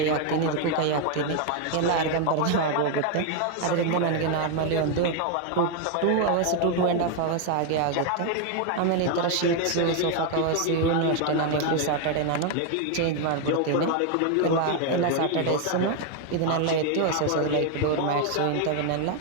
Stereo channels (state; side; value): different; both; correlation 0.01